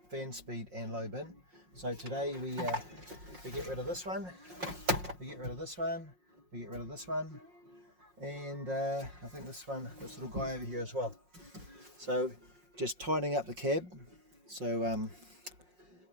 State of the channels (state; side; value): late; left; 5.5 ms